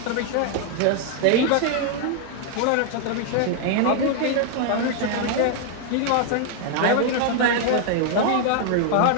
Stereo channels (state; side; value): different; both; correlation 0.00